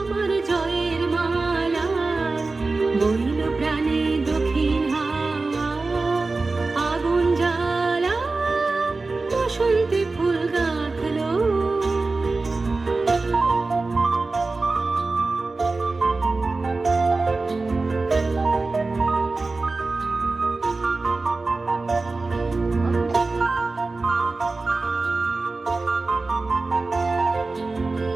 জয়ের মালা, বইল প্রাণে দক্ষিণ হাওয়া আগুন জ্বালা। বসন্তে ফুল গাঁথলো।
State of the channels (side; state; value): left; quieter; 3.6 dB